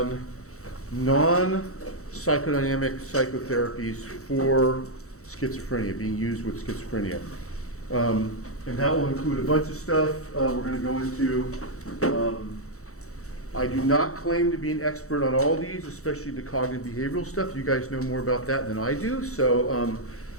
non-psychodynamic psychotherapies for schizophrenia, being used with schizophrenia. And that will include a bunch of stuff we're going to go into. I do not claim to be an expert on all these, especially the cognitive behavioral stuff. You guys know more about that than I do, so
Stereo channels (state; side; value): late; right; 0.64 ms